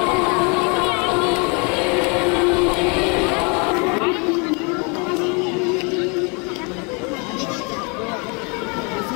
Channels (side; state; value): right; quieter; 33.3 dB